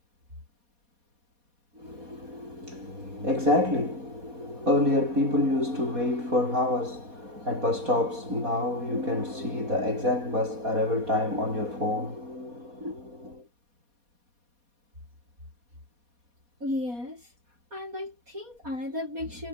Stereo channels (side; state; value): left; late; 4.2 ms